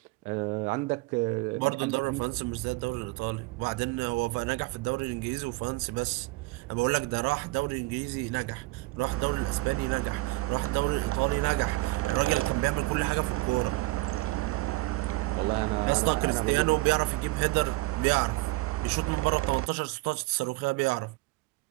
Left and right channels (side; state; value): left; quieter; 22.3 dB